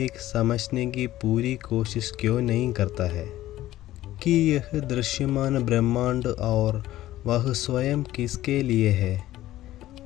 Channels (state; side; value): quieter; right; 14.8 dB